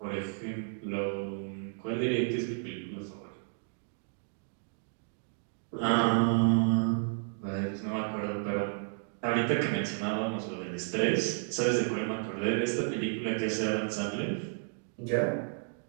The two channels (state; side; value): silent; left; 56 dB below the other